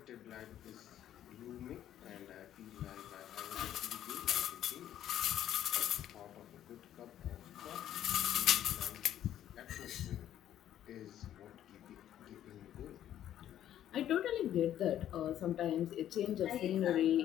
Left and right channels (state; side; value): quieter; right; 11.4 dB